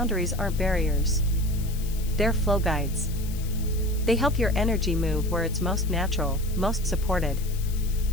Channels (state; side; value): noise; left; hiss, 16 dB below the sound